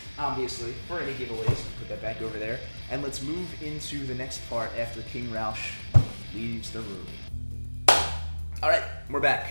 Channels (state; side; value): inverted; both; correlation -1.00